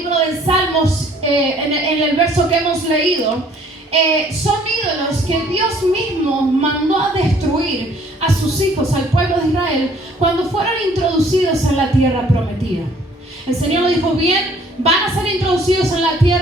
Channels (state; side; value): normal; both; correlation 0.58